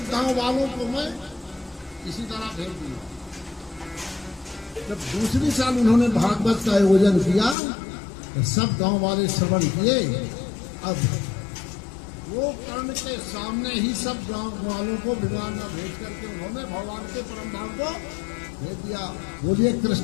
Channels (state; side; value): drops out; right; at 7.6 s